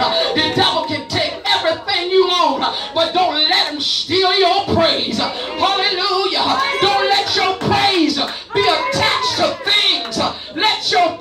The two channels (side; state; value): both; identical; correlation 1.00